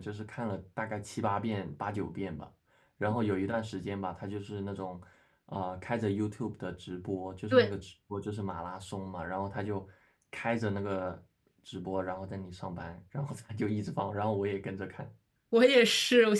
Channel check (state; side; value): identical; both; correlation 1.00